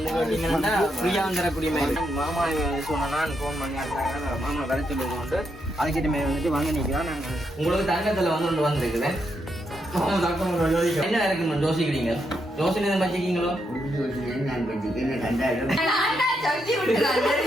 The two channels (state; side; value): normal; both; correlation 0.80